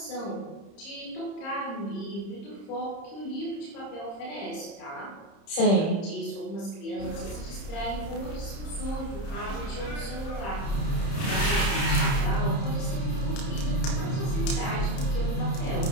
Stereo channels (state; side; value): late; right; 30 ms